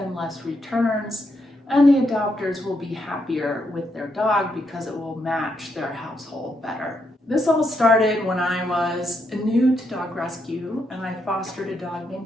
less returns, and the adopters will be happier with their dog because it will match their household better. This all started when I was new to dog rescue and I fostered a dog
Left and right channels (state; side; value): normal; both; correlation 0.79